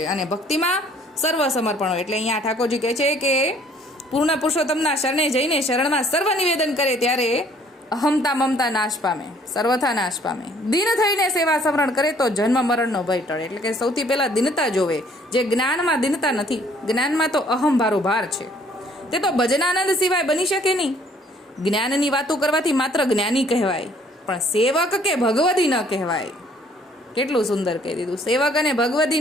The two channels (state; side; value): normal; both; correlation 0.60